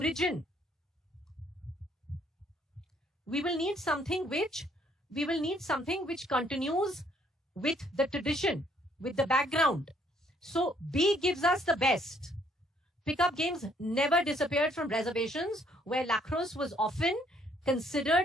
We will need something which continues with the tradition, with the background. So B gives us the best. Pickup games never disappeared from reservations, where lacrosse was often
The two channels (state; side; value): normal; both; correlation 0.65